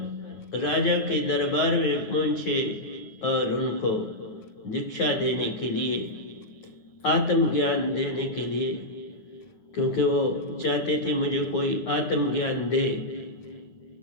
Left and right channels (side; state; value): right; late; 9.7 ms